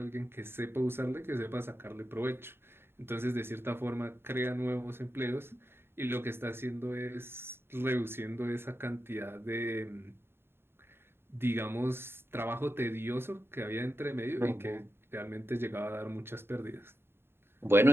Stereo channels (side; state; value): left; late; 0.11 ms